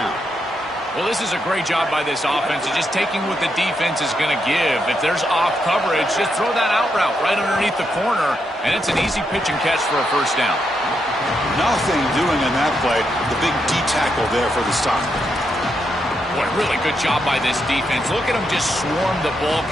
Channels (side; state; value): both; normal; correlation 0.81